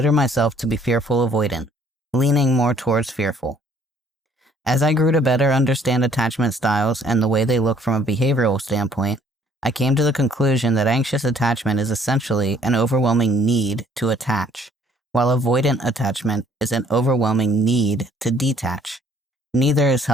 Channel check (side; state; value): both; normal; correlation 0.61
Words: myself to be fearful avoidant, leaning more towards fearful. As I grew to better understand attachment styles and the way they look from a behavioral standpoint, I came to the conclusion that anxious attachment is essentially an overwhelming need to attach, while avoidant attachment is an overwhelming need to detach. Neither is